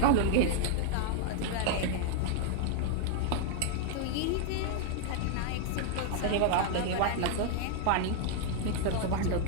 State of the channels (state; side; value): different; both; correlation 0.00